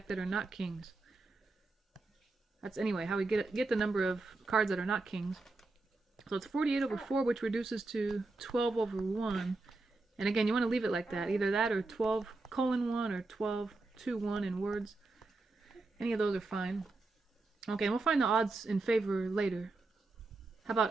that are not kings. That's anyway how we get the number of cards that are not kings. So it's 48 over 4, which reduces to 12 over 1. And again, you want to leave it like that. Either that or 12:1 or 12:2:1 in words. Any of those are fine. Okay, and we'll find the odds in favor later. How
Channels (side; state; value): left; quieter; 3.4 dB